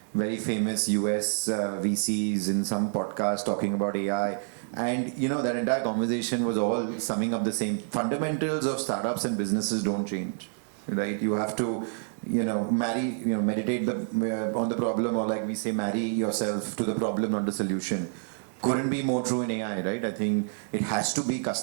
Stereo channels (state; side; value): silent; left; digital silence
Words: very famous US VCs in some podcast talking about AI. And, that entire conversation was all summing up the same. Fundamentals of startups and businesses don't change, right? You have to, meditate on the problem, or like we say, marry yourself to the problem, not the solution. Couldn't be more true in AI, right? I think it has to be